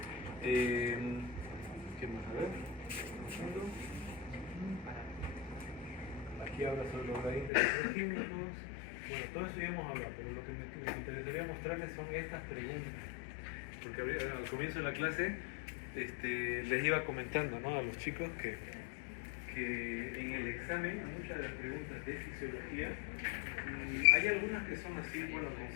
¿Qué más? A ver. Aquí habla sobre los gradientes electroquímicos. Bueno, todo eso ya hemos hablado, pero lo que me interesaría mostrarles son estas preguntas. Porque al comienzo de la clase les iba comentando, ¿no?, a los chicos que en el examen, muchas de las preguntas de fisiología, hay algunas que son así, bueno,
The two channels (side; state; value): right; drops out; at 7.5 s